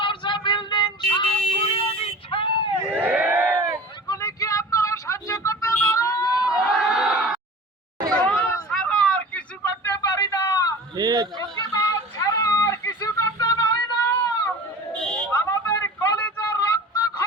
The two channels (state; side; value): normal; both; correlation 0.38